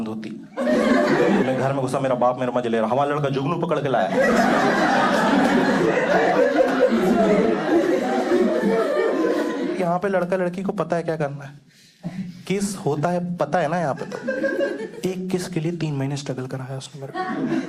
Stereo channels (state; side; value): identical; both; correlation 1.00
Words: होती। मैं घर में घुसा, मेरा बाप मेरा मजे ले रहा, हमारा लड़का जुगनू पकड़ के लाया। यहाँ पे लड़का लड़की को पता है क्या करना है, किस होता है पता है ना। यहाँ पे तो एक किस के लिए 3 महीने स्ट्रगल कराया उसने मेरे